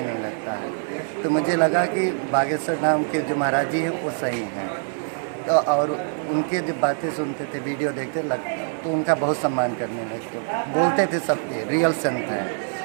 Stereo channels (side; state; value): left; silent; 63 dB below the other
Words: नहीं लगता है। तो मुझे लगा कि बागेश्वर धाम के जो महाराज जी हैं वो सही हैं, तो और उनके जो बातें सुनते थे, वीडियो देखते तो उनका बहुत सम्मान करने लगते, बोलते थे सबके रियल संत हैं।